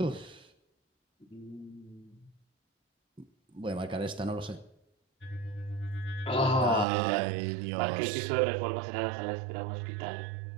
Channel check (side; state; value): left; drops out; at 6.9 s